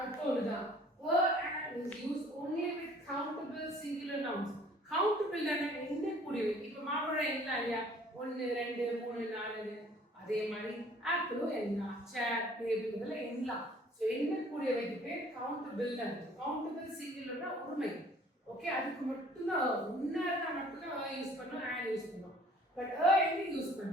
ஒண்ணுதான். and is used only with countable singular nouns. countable னா எண்ணக்கூடியவை. இப்போ மாம்பழம் என்ன இல்லையா, 1 2 3 4. அதே மாதிரி ஆப்பிளும் எண்ணலாம், சேர் டேபிள் இதெல்லாம் எண்ணலாம். ஸோ எண்ணக்கூடியவைக்கு பேர் கவுண்டபிள். கவுண்டபிள் சிங்குலர்னா ஒருமை. ஓகே, அதுக்கு மட்டும்தான் முன்னாடி மட்டும்தான் யூஸ் பண்ணோம், and யூஸ் பண்ணோம். பட் எங்க யூஸ்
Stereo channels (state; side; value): normal; both; correlation 0.54